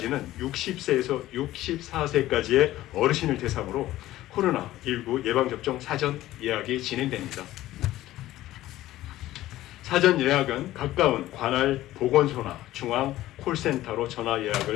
60세에서 64세까지의 어르신을 대상으로 코로나19 예방접종 사전 예약이 진행됩니다. 사전 예약은 가까운 관할 보건소나 중앙 콜센터로 전화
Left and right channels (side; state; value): right; quieter; 15.2 dB